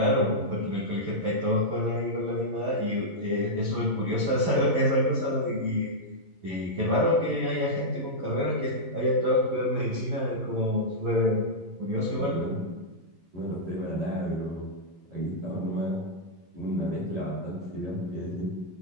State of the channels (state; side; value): late; left; 11 ms